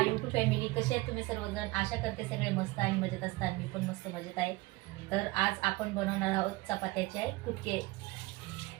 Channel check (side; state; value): left; quieter; 22.2 dB